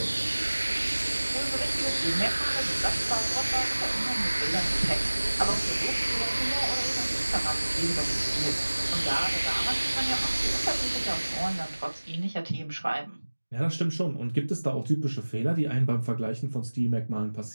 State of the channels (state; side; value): inverted; both; correlation -1.00